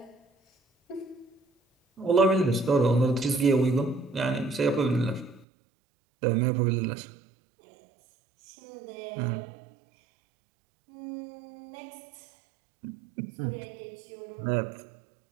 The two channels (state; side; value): drops out; left; at 5.5 s